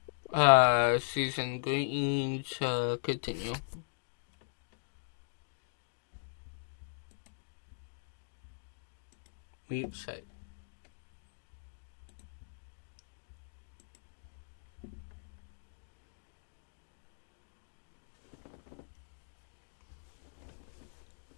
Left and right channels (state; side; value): silent; right; digital silence